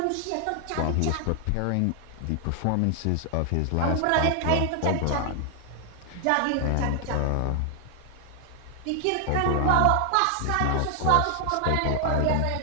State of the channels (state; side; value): different; both; correlation 0.00